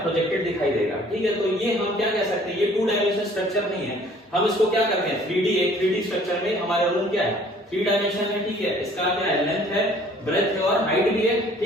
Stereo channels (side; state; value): both; normal; correlation 0.55